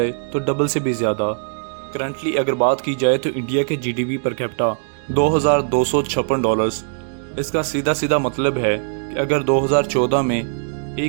तो डबल से भी ज़्यादा। करंटली अगर बात की जाए तो इंडिया के जीडीपी पर कैपिटा 2256 डॉलर्स। इसका सीधा सीधा मतलब है कि अगर 2014 में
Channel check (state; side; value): silent; left; digital silence